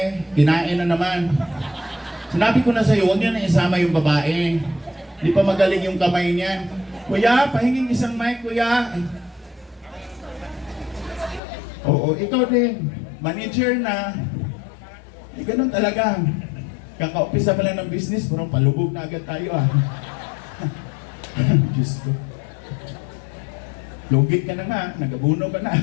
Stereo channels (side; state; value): right; drops out; at 11.4 s